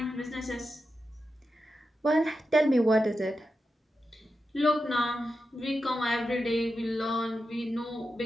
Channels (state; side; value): normal; both; correlation 0.90